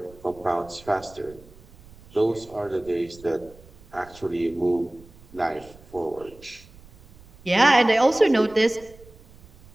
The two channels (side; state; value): right; noise; rumble, 23 dB below the sound